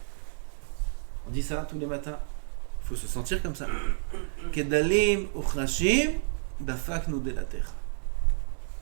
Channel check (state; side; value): silent; left; digital silence